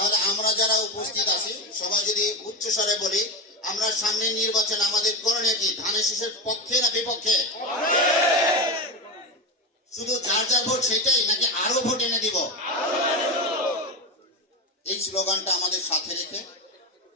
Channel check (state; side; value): normal; both; correlation 0.17